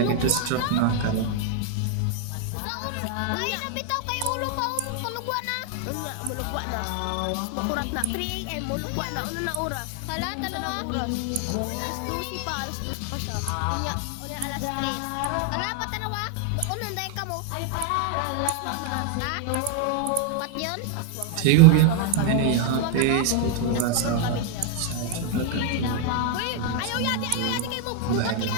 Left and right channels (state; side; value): different; both; correlation 0.00